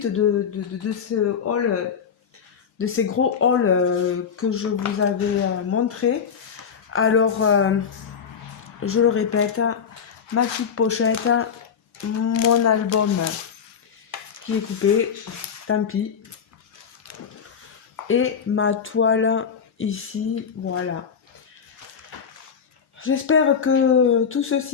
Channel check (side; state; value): right; quieter; 6.9 dB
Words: de ce haul, de ces gros hauls que je vous avais montré. Alors, je le répète, ma petite pochette, mon album qui est coupé, tant pis, et ma toile ici, voilà. J'espère que tout